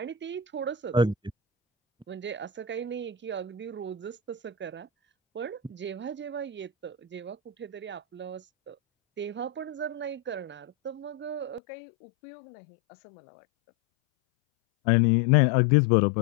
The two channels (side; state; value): right; drops out; at 11.6 s